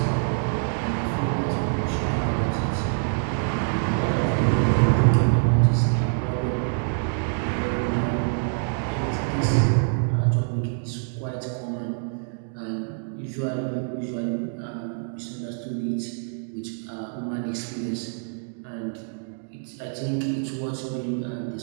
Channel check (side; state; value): left; silent; digital silence